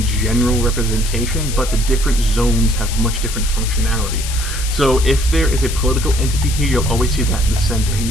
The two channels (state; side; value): noise; left; hiss, 8 dB below the sound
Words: general representation, but the different zones have much different functionality. So if there is a political entity here, you'll always see that in the center. And you